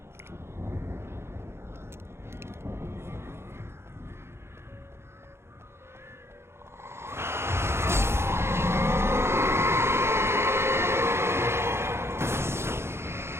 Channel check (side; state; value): left; late; 0.12 ms